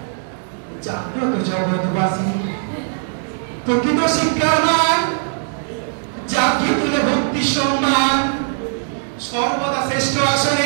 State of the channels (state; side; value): silent; left; 66 dB below the other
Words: জাগ্রত জগৎবাসী প্রকৃত শিক্ষার মান জাতীয় তুলে ভক্তি সম্মান সর্বদা শ্রেষ্ঠ